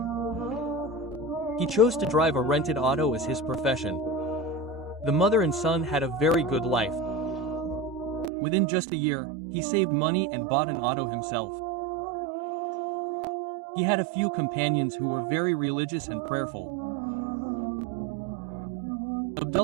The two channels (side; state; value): left; drops out; at 8.3 s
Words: He chose to drive a rented auto as his profession. The mother and son had a very good life. Within just a year, he saved money and bought an auto himself. He had a few companions who were very religious and prayerful.